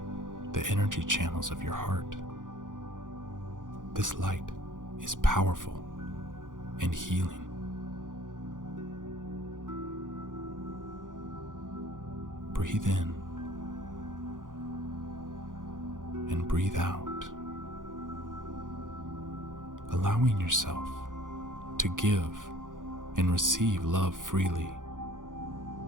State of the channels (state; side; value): late; left; 0.88 ms